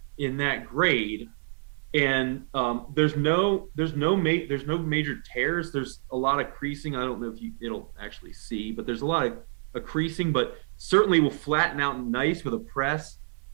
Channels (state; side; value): silent; left; 57 dB below the other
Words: grade. And there's no major tears. There's a lot of creasing. I don't know if it'll actually see, but there's a lot of creasing, but certainly will flatten out nice with a press.